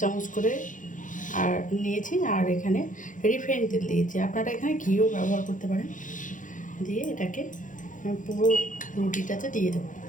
চামচ করে আর নিয়েছি, আর এখানে রিফাইন তেল দিয়েছি। আপনারা এখানে ঘিও ব্যবহার করতে পারেন। দিয়ে এটাকে পুরো রুটিটাতে দিয়ে দেবো।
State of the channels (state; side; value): late; right; 0.38 ms